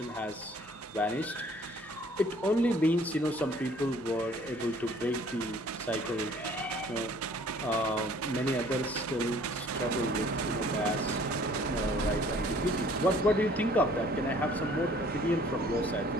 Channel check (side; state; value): both; normal; correlation 0.56